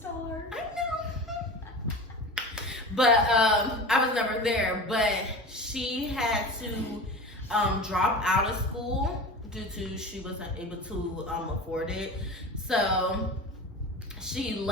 I know. But I was never there. But she had to drop out of school due to she wasn't able to afford it. So she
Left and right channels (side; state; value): both; normal; correlation 0.32